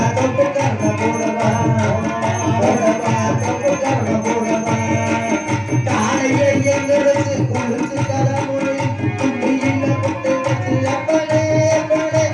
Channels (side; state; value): both; identical; correlation 1.00